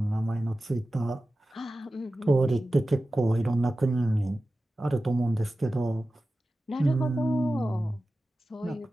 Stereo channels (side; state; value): both; normal; correlation 0.94